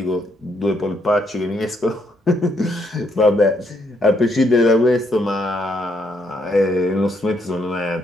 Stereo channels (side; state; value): both; normal; correlation 0.73